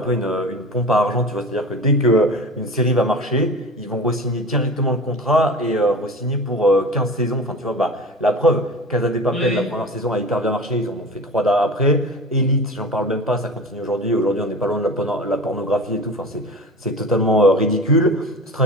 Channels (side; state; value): both; normal; correlation 0.35